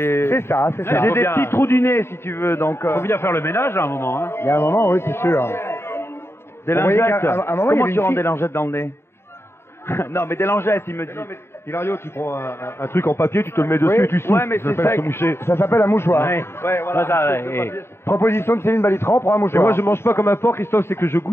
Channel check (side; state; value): right; late; 0.12 ms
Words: C'est ça, c'est ça. J'ai des petits trous du nez, si tu veux, donc... Faut bien faire le ménage à un moment, hein. Il y a un moment, oui, c'est sûr. Des Vous voyez lingettes. qu'à un moment, il y Comment avait tu une rends fille- des lingettes dans le nez? Non, mais des lingettes, il me dit. Hilario, tu prends un truc en papier, tu te le mets dessus Oui. et tu souffles. Ouais, mais c'est s'appelle sec. se moucher. Ça s'appelle un mouchoir. Ouais, voilà. Proposition de Céline Balitran pour un Et mouchoir. moi, je mange pas comme un porc, Christophe, c'est que je